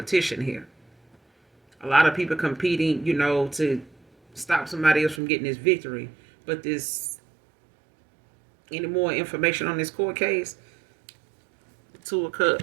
here. A lot of people competing, to stop somebody else from getting this victory. But this, any more information on this court case? Two of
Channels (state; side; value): drops out; left; at 5.2 s